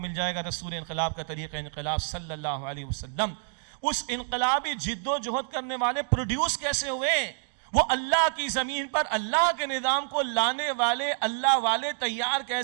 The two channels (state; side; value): silent; left; digital silence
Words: جائے گا. رسول انقلاب کا طریقہ انقلاب صلی اللہ علیہ وسلم. اس انقلابی جد و جہد کرنے والے پروڈیوس کیسے ہوئے؟ وہ اللہ کی زمین پر اللہ کے نظام کو لانے والے اللہ والے تیار